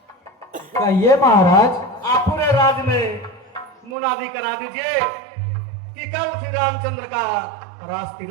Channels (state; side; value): drops out; left; at 4.0 s